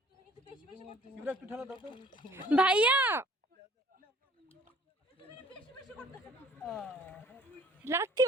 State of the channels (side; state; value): both; normal; correlation 0.54